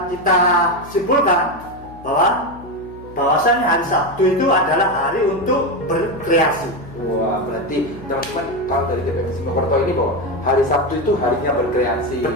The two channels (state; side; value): noise; left; hum, 19 dB below the sound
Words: kita simpulkan bahwasannya hari Sabtu itu adalah hari untuk berkreasi. wah, berarti teman-teman kalau dari TPM Simokerto ini bahwa hari Sabtu itu harinya berkreasi.